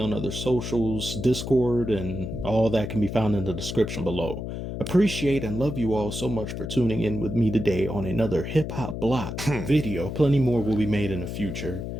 other socials, Discord, and all that can be found in the description below. Appreciate and love you all so much for tuning in with me today on another Hip Hop Block video. Plenty more will be made in the future,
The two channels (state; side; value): noise; left; hum, 6 dB below the sound